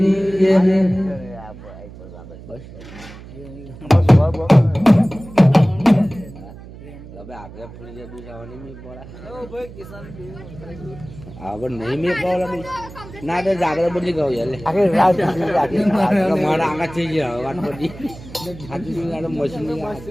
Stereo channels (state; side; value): noise; right; hum, 16 dB below the sound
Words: આપણે ફૂલી દુસાવાની મેં પડે હવે નહીં મેં પડે ના તો જાગર બદલી ગયો મારા આગળ થઈ ગયા વાત બધી મશીન